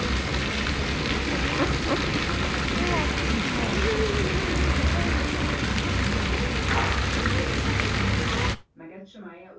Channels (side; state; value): both; identical; correlation 1.00